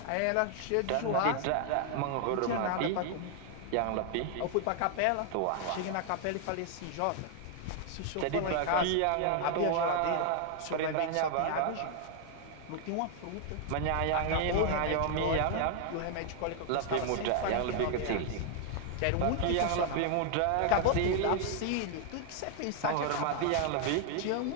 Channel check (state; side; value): different; both; correlation 0.00